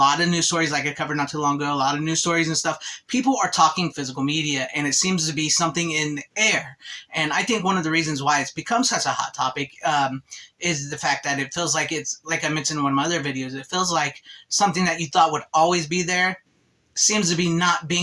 of news stories, like I covered not too long ago, a lot of news stories and stuff. People are talking physical media, and it seems to be something in the air. And I think one of the reasons why it's become such a hot topic is the fact that it feels like it's, like I mentioned in one of my other videos, it feels like something that you thought would always be there seems to be not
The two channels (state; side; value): identical; both; correlation 1.00